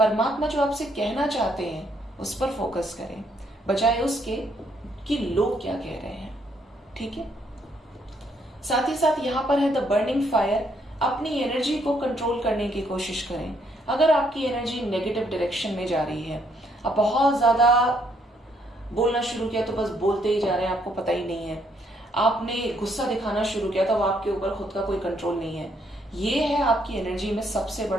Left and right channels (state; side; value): normal; both; correlation 0.71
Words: जो आपसे कहना चाहते हैं उस पर फोकस करें, बजाय उसके कि लोग क्या कह रहे हैं। ठीक है, साथ ही साथ यहां पर है द बर्निंग फायर। अपनी एनर्जी को कंट्रोल करने की कोशिश करें। अगर आपकी एनर्जी नेगेटिव डायरेक्शन में जा रही है, आप बहुत ज्यादा बोलना शुरू किया तो बस बोलते ही जा रहे हैं, आपको पता ही नहीं है, आपने गुस्सा दिखाना शुरू किया तो आपके ऊपर खुद का कोई कंट्रोल नहीं है, ये है आपकी एनर्जी में सबसे